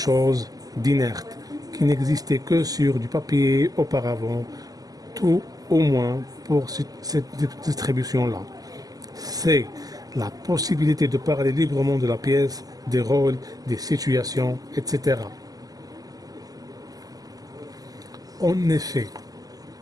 d'inerte, qui n'existait que sur du papier auparavant, tout au moins pour cette distribution-là. C. La possibilité de parler librement de la pièce, des rôles, des situations, etc. En effet,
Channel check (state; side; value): late; left; 0.17 ms